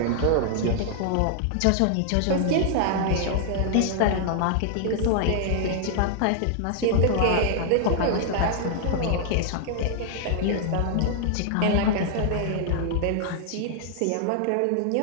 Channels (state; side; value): different; both; correlation -0.01